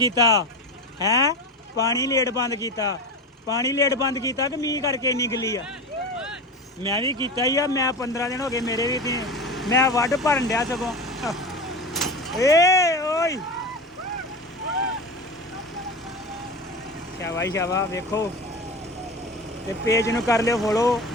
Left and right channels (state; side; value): normal; both; correlation 0.26